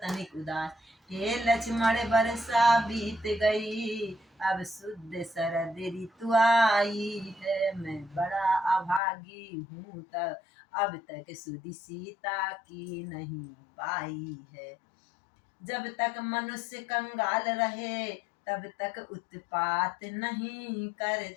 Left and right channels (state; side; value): drops out; right; at 9.0 s